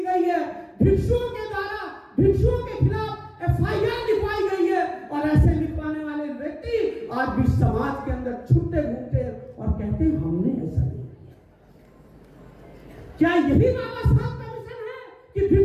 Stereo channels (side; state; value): both; identical; correlation 1.00